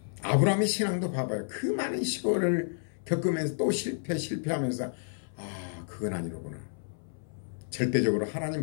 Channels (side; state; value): right; silent; 57 dB below the other